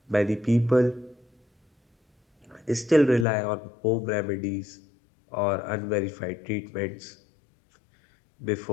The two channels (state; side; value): drops out; right; at 3.2 s